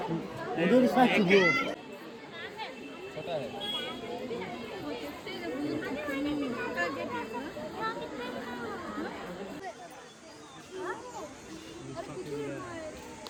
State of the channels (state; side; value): identical; both; correlation 1.00